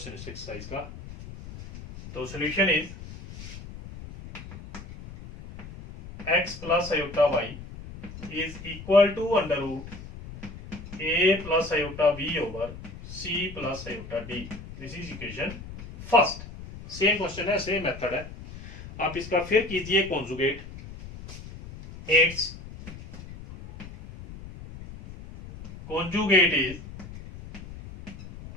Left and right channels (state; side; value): noise; left; rumble, 13 dB below the sound